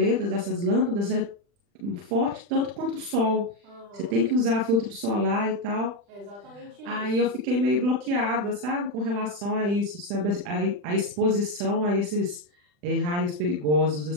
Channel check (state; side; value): late; left; 40 ms